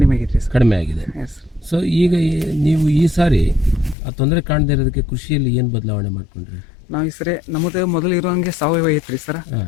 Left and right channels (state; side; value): drops out; right; at 4.0 s